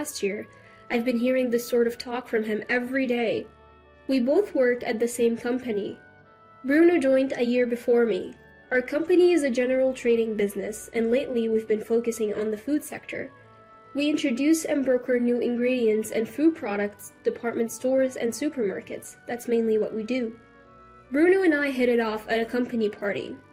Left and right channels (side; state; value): both; identical; correlation 1.00